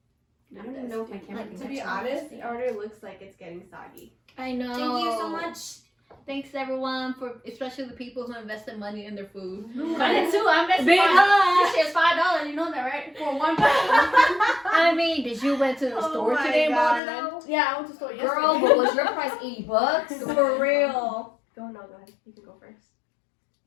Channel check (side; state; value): right; drops out; at 17.0 s